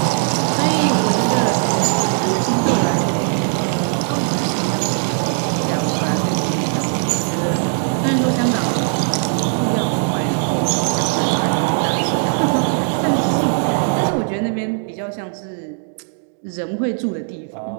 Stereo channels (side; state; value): left; silent; digital silence